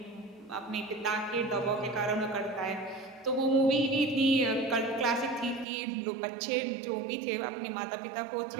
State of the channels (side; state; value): left; drops out; at 5.7 s